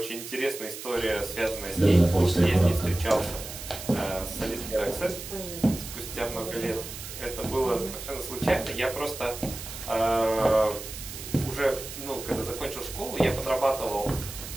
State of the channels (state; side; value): noise; right; hiss, 10 dB below the sound